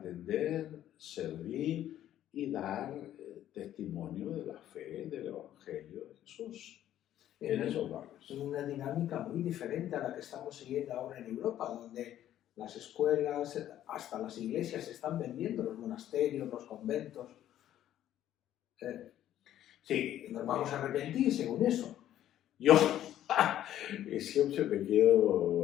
servir y dar testimonio de la fe, del Evangelio de Jesús en esos barrios. En una dinámica muy diferente a la que estamos siguiendo ahora en Europa, donde las escuelas, hasta las iglesias se están vendiendo, los monasterios, los conventos. Sí. Nos vamos a arrepentir según eso. Yo siempre me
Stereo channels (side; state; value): right; quieter; 12.0 dB